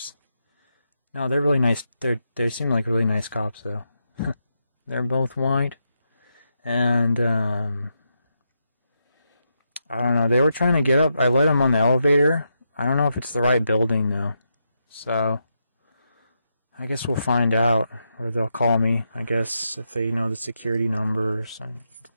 No, they're really nice. They seem like really nice cops, though. They're both white. And, I don't know. They were trying to get up. I let them on the elevator. I don't know if it's the right building, though. So, I guess we'll find out, or they'll call me, I guess, if they know the security numbers. And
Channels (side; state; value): both; inverted; correlation -0.84